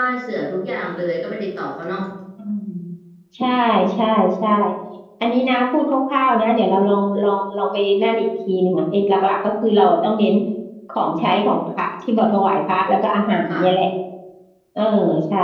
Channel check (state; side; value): identical; both; correlation 1.00